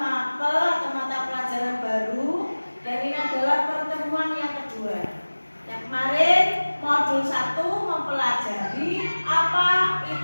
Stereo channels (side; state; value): both; inverted; correlation -1.00